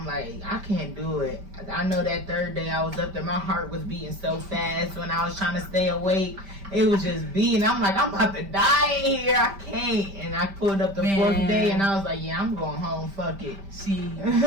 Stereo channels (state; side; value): late; left; 5.1 ms